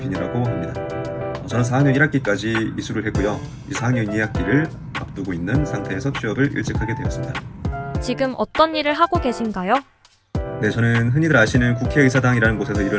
합니다. 저는 4학년 1학기까지 이수를 했고요. 이 4학년 2학기를 앞두고 있는 상태에서 취업을 일찍 하게 되었습니다. 지금 어떤 일을 하고 계신가요? 네, 저는 흔히들 아시는 국회의사당이라는 곳에서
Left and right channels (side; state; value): both; identical; correlation 1.00